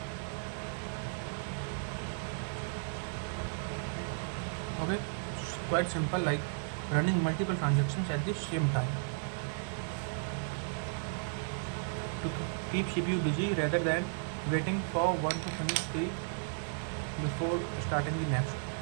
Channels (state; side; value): silent; left; digital silence